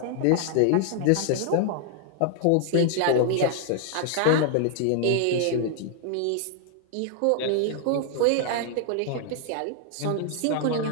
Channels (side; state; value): both; different; correlation 0.00